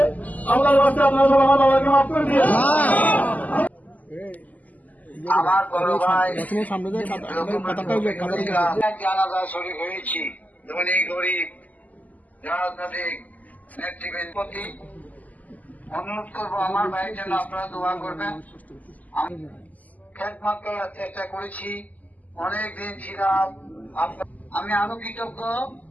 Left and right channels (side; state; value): right; late; 0.078 ms